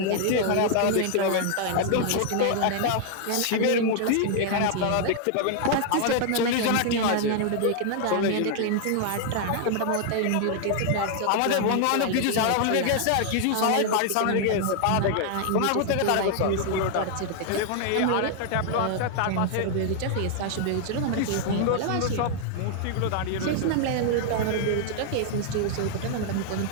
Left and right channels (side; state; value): both; different; correlation 0.00